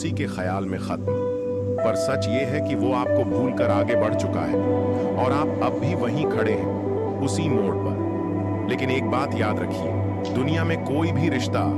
के ख्याल में खत्म। पर सच ये है कि वो आपको भूलकर आगे बढ़ चुका है और आप अब भी वहीं खड़े हैं, उसी मोड़ पर। लेकिन एक बात याद रखिए, दुनिया में कोई भी रिश्ता,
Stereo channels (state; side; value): identical; both; correlation 1.00